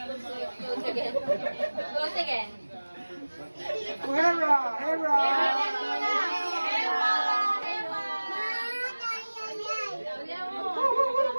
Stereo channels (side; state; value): both; inverted; correlation -1.00